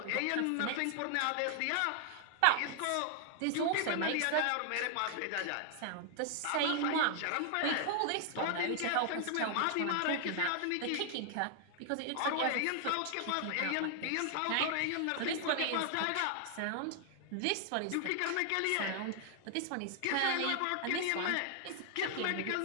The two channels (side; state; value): both; different; correlation 0.00